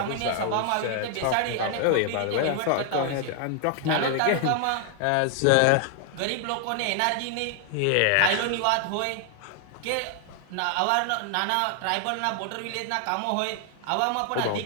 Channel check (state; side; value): different; both; correlation 0.00